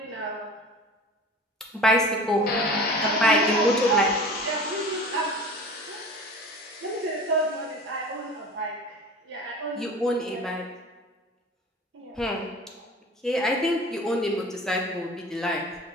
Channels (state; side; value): normal; both; correlation 0.38